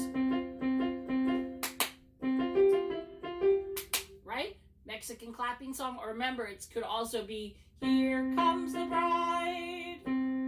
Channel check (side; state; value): both; identical; correlation 1.00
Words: right? Mexican clapping song. Or remember, it could also be Here Comes the Bride.